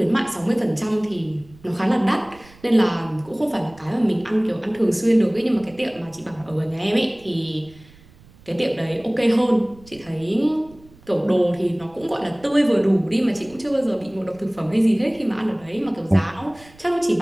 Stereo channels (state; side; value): noise; right; rumble, 25 dB below the sound